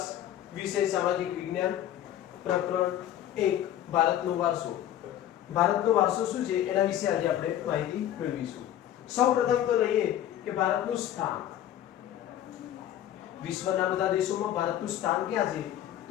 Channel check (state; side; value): quieter; right; 11.7 dB